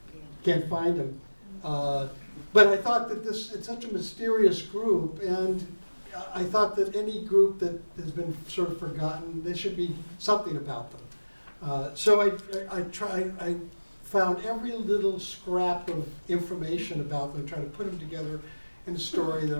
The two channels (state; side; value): inverted; both; correlation -1.00